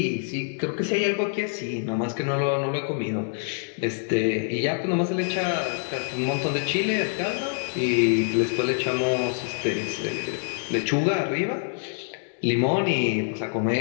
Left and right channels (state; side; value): silent; right; 58 dB below the other